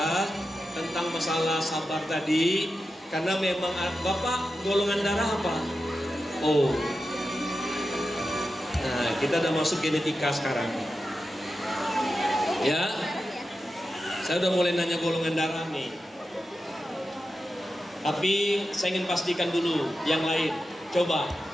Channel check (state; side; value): normal; both; correlation 0.90